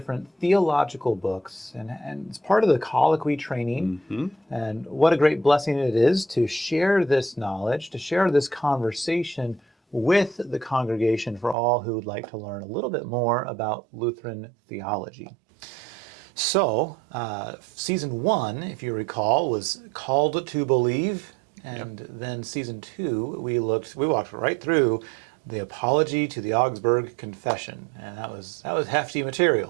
theological books. And it's part of the colloquy training. And what a great blessing it is to share this knowledge, to share this conversation with the congregation for all who would like to learn a little bit more about Lutheran theology. So, Season 1, if you recall, was Called to Believe, and then Season 2, we walked right through the Apology to the Augsburg Confession, and that was hefty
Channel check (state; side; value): drops out; left; at 11.6 s